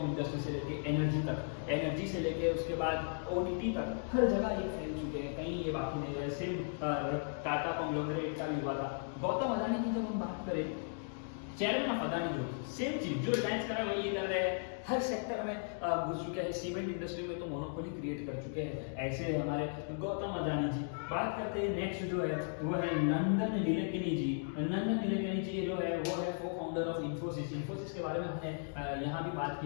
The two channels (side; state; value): right; silent; digital silence